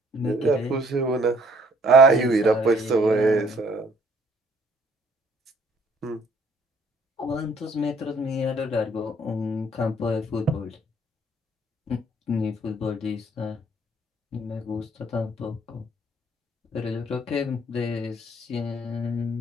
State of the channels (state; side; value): normal; both; correlation 0.61